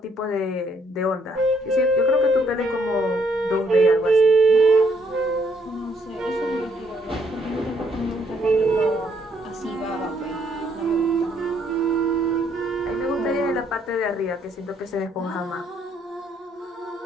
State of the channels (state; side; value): normal; both; correlation 0.69